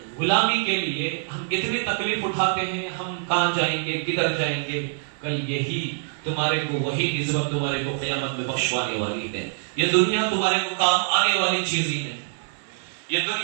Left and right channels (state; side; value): silent; left; digital silence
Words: غلامی کے لیے ہم اتنی تکلیف اٹھاتے ہیں، ہم کہاں جائیں گے، کدھر جائیں گے؟ کل یہی تمہارے کو وہی نسبت تمہارے کو قیامت میں بخشوانے والی ہے۔ یہ دنیا تمہارے کو کام آنے والی چیز ہی نہیں، یہ